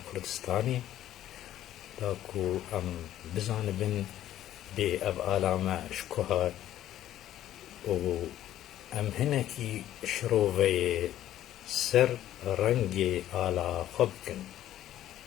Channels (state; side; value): quieter; right; 12.6 dB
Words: Kurdistanê da ku em bizanibin bê ev ala me ji ku hat û em hinekî şiroveyê ser rengê ala xwe bikin.